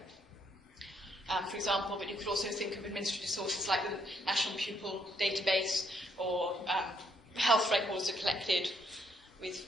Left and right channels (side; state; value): both; normal; correlation 0.72